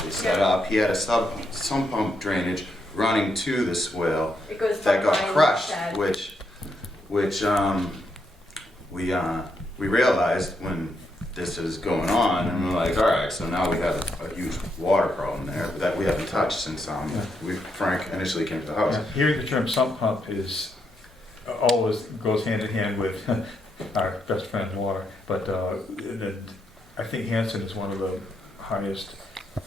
set Yeah. up. He had a sump pump drainage running to the swale It goes that got behind the crushed, shed. which we realized when this is going on, and we're like, all right, so now we have a huge water problem there that we haven't touched since Frank initially came to the house. Yeah, hearing the term sump pump is always goes hand in hand with our best friend water, but and I think Hanson is one of the highest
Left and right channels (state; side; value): normal; both; correlation 0.79